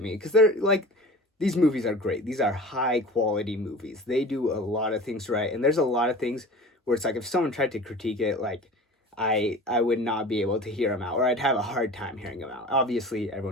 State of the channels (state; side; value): normal; both; correlation 0.38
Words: because they're like, these movies are great. These are high quality movies. They do a lot of things right, and there's a lot of things where it's like if someone tried to critique it, like I would not be able to hear them out, or I'd have a hard time hearing them out. Obviously,